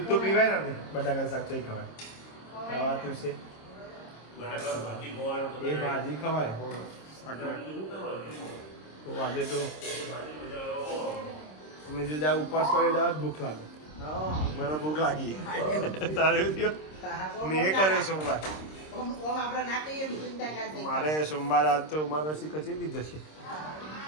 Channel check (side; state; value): right; late; 26 ms